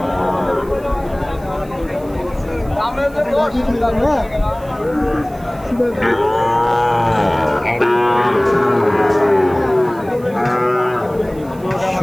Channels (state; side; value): noise; right; hiss, 25 dB below the sound